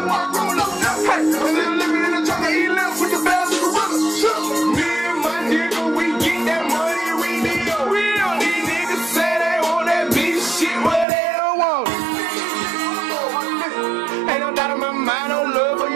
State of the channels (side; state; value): left; drops out; at 11.1 s